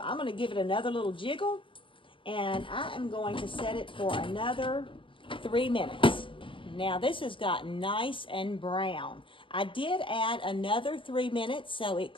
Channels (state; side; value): late; right; 0.25 ms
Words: I'm going to give it another little jiggle and I am going to set it for another 3 minutes. Now this has gotten nice and brown. I did add another 3 minutes, so it